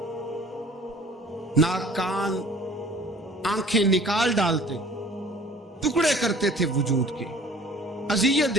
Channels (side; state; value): both; normal; correlation 0.50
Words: ناک کان آنکھیں نکال ڈالتے، ٹکڑے کرتے تھے وجود کے، اذیت